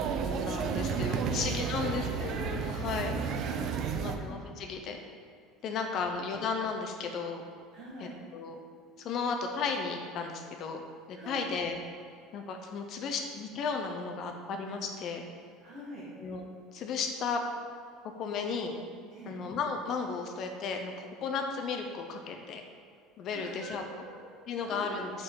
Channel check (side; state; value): both; normal; correlation 0.42